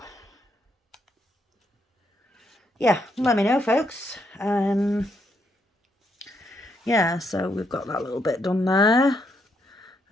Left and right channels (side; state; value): both; normal; correlation 0.76